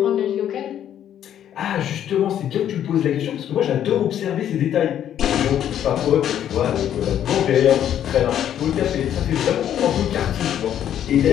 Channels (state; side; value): quieter; right; 10.4 dB